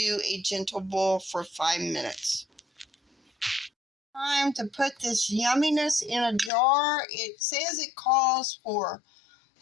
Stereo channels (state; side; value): drops out; right; at 6.5 s